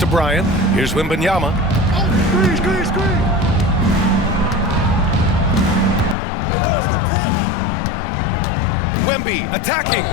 Bryant. Here's Wembanyama. Wemby attacking.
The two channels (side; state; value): right; drops out; at 6.2 s